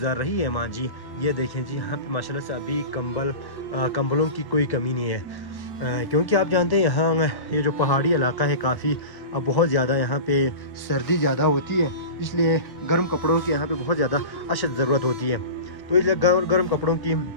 रही है माँ जी। ये देखें जी, यहाँ पे माशाल्लाह से अभी कंबलों की कोई कमी नहीं है। क्योंकि आप जानते हैं यहाँ ये जो पहाड़ी इलाका है, काफ़ी बहुत ज़्यादा यहाँ पे सर्दी ज़्यादा होती है, इसलिए गर्म कपड़ों की यहाँ पे बहुत ज़्यादा अशद ज़रूरत होती है। तो इसलिए गर्म कपड़ों की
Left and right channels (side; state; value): right; late; 1.1 ms